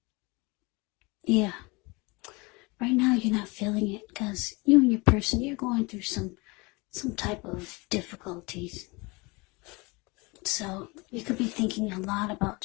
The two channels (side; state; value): right; quieter; 26.3 dB